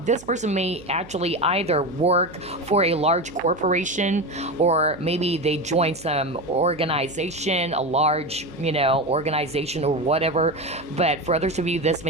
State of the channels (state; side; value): noise; right; hum, 19 dB below the sound